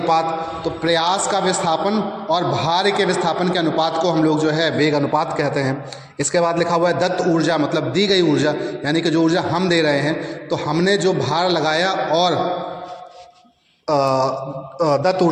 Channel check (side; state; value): both; identical; correlation 1.00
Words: तो प्रयास का विस्थापन और भार के विस्थापन के अनुपात को हम लोग जो है वेग अनुपात कहते हैं। इसके बाद लिखा हुआ है दत्त ऊर्जा, मतलब दी गई ऊर्जा, यानी कि जो ऊर्जा हम दे रहे हैं, तो हमने जो भार लगाया और दत्त